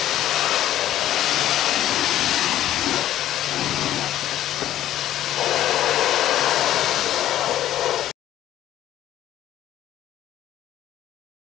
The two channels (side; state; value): right; quieter; 12.7 dB